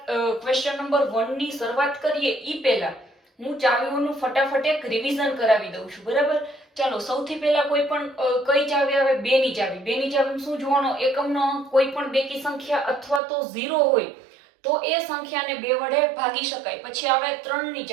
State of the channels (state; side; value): drops out; left; at 13.2 s